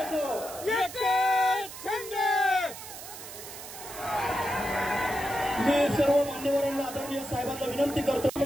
मी सर्व मान्यवरांना आदरणीय साहेबांना विनंती करतो।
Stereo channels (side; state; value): right; noise; hiss, 12 dB below the sound